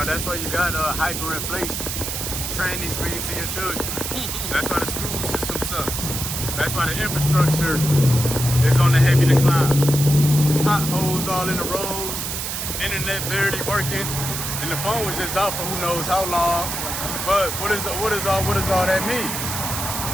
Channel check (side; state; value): right; noise; hiss, 4 dB below the sound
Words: that's why you got hyperinflation. Train these things to your children. That's why the school system sucks. That's why the infrastructure is on the heavy decline. Potholes all in the roads, internet barely working, and the phone was just out for who knows how long. But what does all that mean?